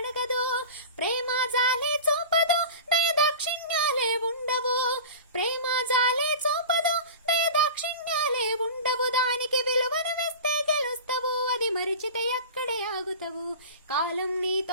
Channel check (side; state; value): both; inverted; correlation -0.34